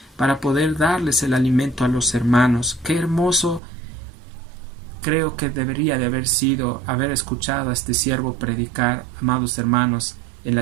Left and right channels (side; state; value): left; drops out; at 3.6 s